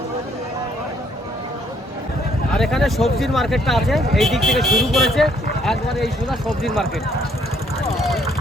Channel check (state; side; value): normal; both; correlation 0.66